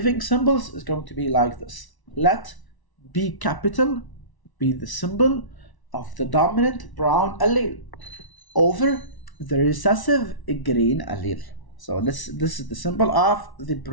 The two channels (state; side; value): late; right; 1.1 ms